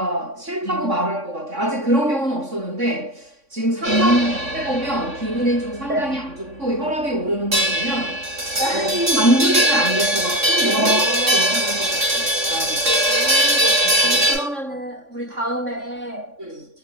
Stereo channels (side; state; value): left; late; 3.6 ms